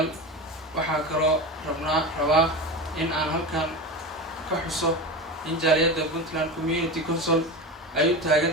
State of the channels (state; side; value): normal; both; correlation 0.25